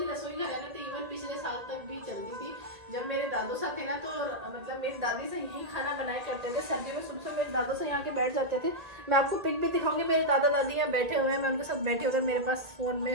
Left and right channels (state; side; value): late; left; 1.8 ms